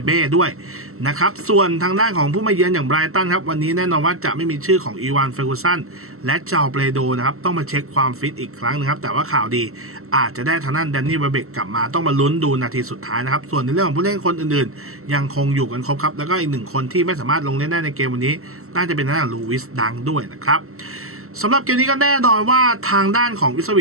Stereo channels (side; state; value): left; late; 0.63 ms